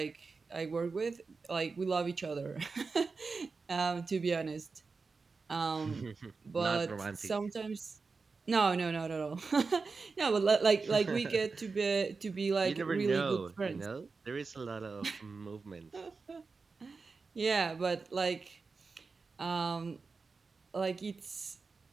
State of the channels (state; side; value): quieter; left; 4.4 dB